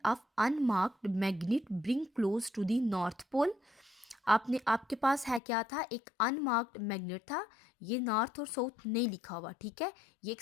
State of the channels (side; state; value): right; drops out; at 5.4 s